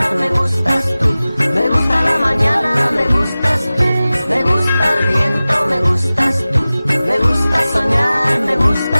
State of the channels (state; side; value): inverted; both; correlation -0.97